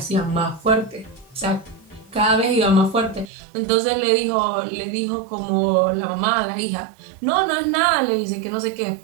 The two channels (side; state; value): left; drops out; at 3.2 s